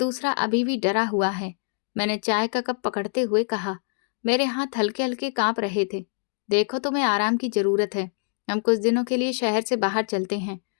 अभी भी डरा हुआ है। मैंने चाय का कप पकड़ते हुए कहा। मेरे हाथ हल्के हल्के कांप रहे थे। देखो, तुम्हें आराम की जरूरत है। हम कुछ दिनों के लिए शहर से बाहर चलते हैं,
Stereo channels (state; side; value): silent; right; digital silence